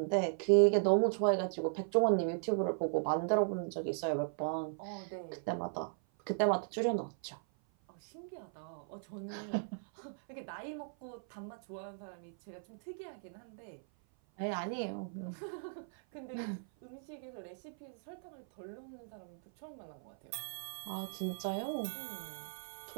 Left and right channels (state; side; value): silent; left; 53 dB below the other